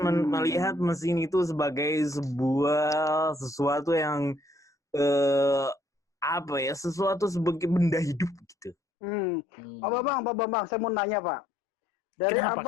melihat mesin itu sebagai sesuatu yang sesuatu sebagai benda hidup gitu. Pak Bambang, saya mau nanya Pak. Dari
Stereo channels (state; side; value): drops out; right; at 8.8 s